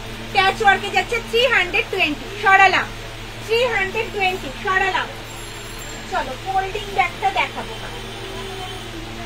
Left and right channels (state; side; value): identical; both; correlation 1.00